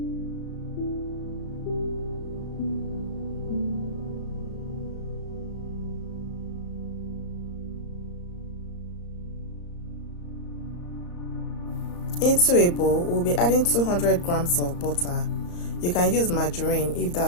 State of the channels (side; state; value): right; late; 34 ms